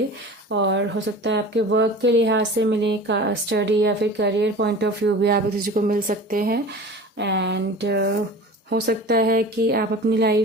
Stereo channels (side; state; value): both; normal; correlation 0.38